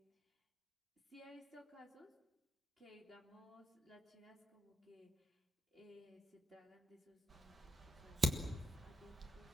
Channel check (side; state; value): both; normal; correlation 0.85